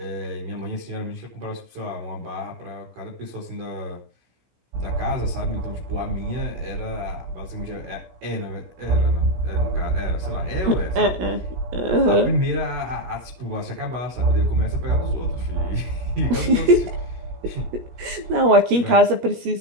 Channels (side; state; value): left; late; 17 ms